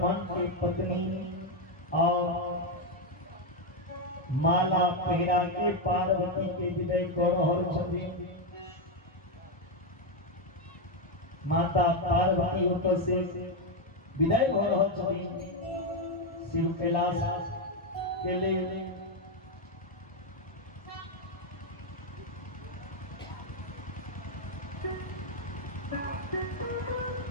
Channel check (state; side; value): normal; both; correlation 0.05